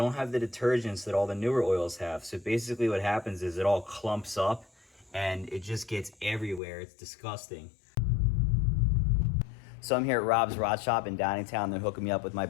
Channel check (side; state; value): right; drops out; at 6.6 s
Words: have the detergents that all the newer oils have. So basically what happens is it all clumps up and it just gets everywhere. It's disgusting. So I'm here at Rob's Rod Shop in Downingtown. They're hooking me up with my